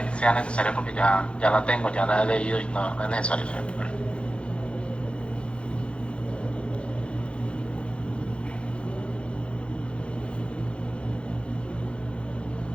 sea necesario porque ya la tengo, ya la he leído y no es necesario.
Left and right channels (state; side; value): late; right; 0.058 ms